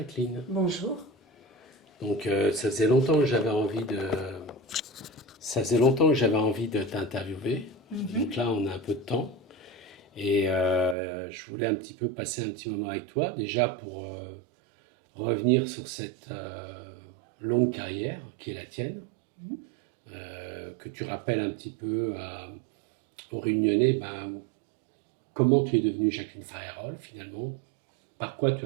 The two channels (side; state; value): left; drops out; at 11.0 s